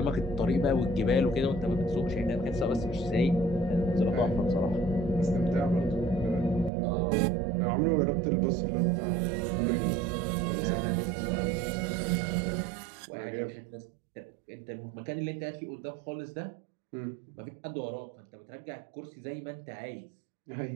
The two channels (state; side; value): drops out; left; at 6.7 s